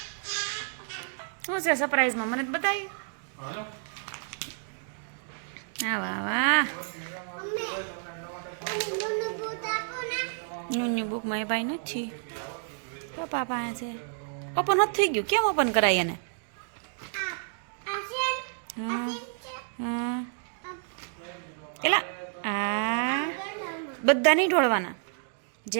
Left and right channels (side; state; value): left; silent; digital silence